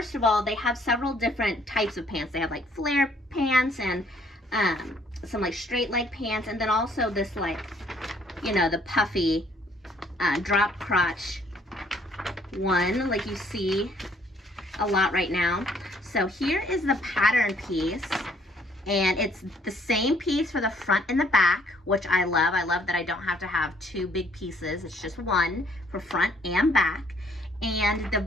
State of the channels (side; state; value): both; normal; correlation 0.64